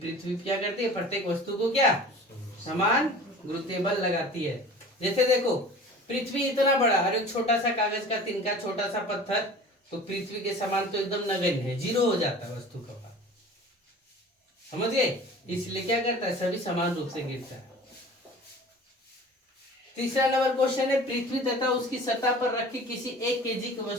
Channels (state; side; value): normal; both; correlation 0.42